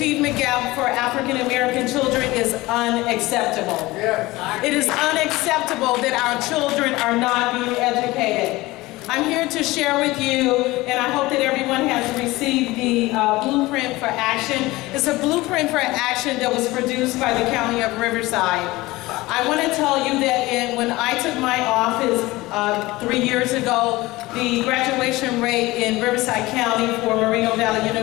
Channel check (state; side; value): quieter; right; 19.9 dB